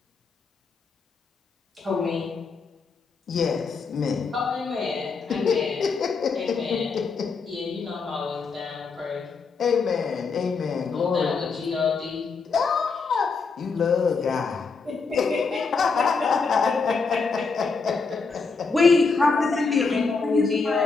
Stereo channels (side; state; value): right; quieter; 4.7 dB